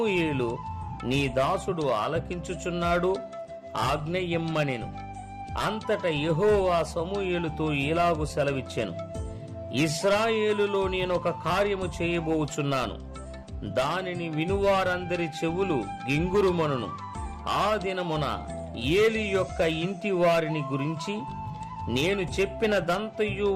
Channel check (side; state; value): both; identical; correlation 1.00